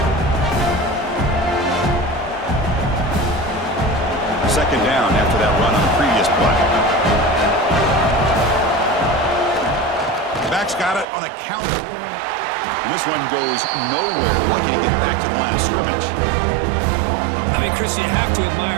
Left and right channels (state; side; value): drops out; left; at 11.1 s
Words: Second down after that run on the previous play. Back's got it on a counter. And this one goes nowhere. Why can't he get back to the line of scrimmage? I mean, Chris, you have to